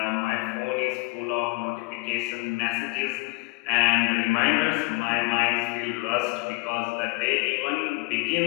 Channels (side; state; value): right; quieter; 27.7 dB